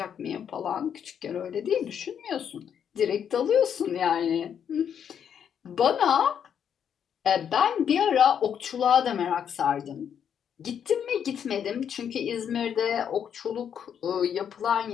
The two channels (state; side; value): quieter; right; 8.3 dB